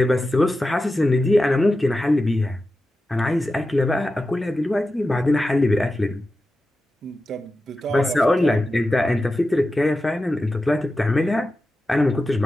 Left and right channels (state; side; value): normal; both; correlation 0.92